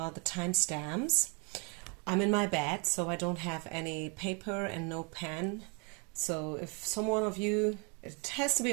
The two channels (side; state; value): left; quieter; 34.2 dB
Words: timestamps. I'm in my bed, so I don't have any paper and no pen. So if someone of you, it has to be